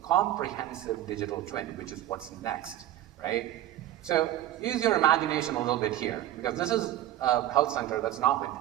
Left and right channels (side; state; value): left; quieter; 13.2 dB